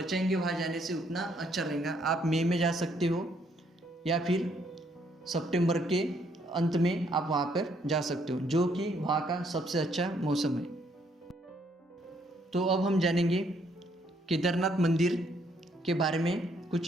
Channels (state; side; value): normal; both; correlation 0.69